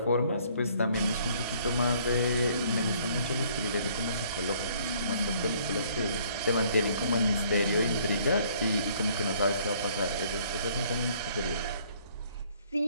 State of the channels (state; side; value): inverted; both; correlation -0.61